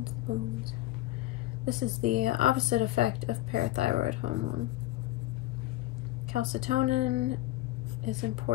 the bones. This is the opposite effect of parathyroid hormone. Calcitonin is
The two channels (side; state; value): right; quieter; 16.3 dB